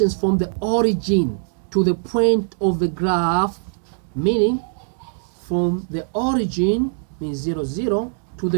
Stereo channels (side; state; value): left; silent; digital silence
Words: from the origin to the point of the graph, meaning from the origin, means 0, 0, to